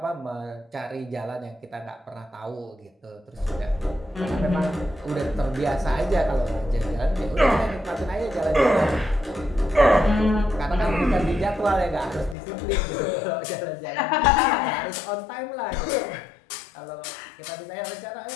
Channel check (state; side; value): drops out; right; at 12.4 s